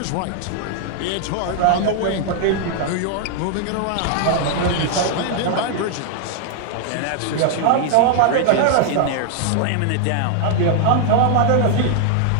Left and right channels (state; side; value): different; both; correlation 0.00